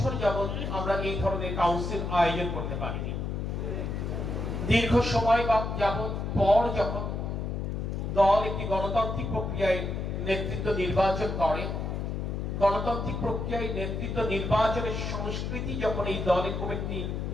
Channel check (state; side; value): noise; left; hum, 3 dB below the sound